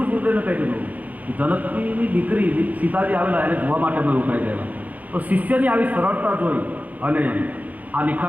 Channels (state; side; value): late; left; 0.078 ms